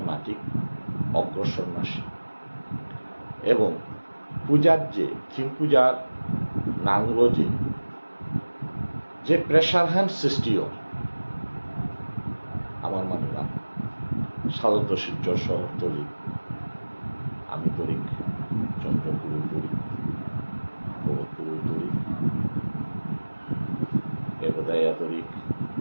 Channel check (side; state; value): both; inverted; correlation -1.00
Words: এমাটিক অগ্রসর নাশী এবং পূজার থিম পূজার নাংলো যে প্রেশার হ্যান্ড সৃষ্টিও আমার মানুষরা সাধারণত শিলচর শহরতলি আমি তরিক চন্দ্রপুর তরিক ভরতপুর তরিক এগোদায়া তরিক